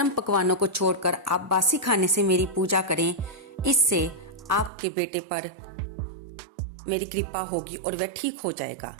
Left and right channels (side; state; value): left; drops out; at 4.7 s